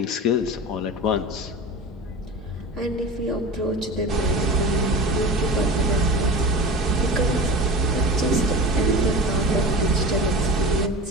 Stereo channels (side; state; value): both; normal; correlation 0.32